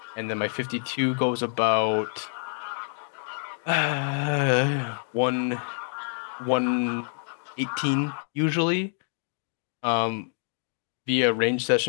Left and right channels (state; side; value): silent; right; 58 dB below the other